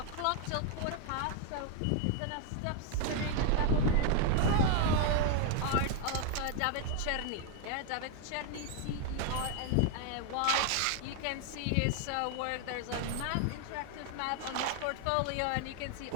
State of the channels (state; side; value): different; both; correlation 0.00